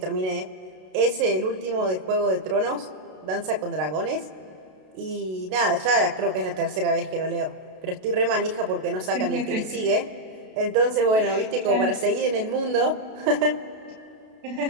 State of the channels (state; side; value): late; left; 32 ms